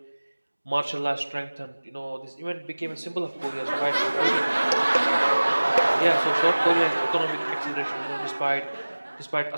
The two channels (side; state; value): both; inverted; correlation -1.00